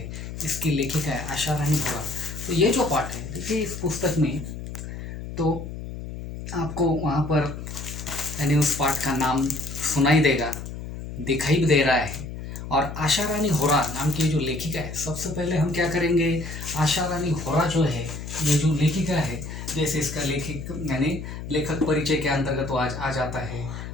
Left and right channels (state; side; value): noise; left; hum, 9 dB below the sound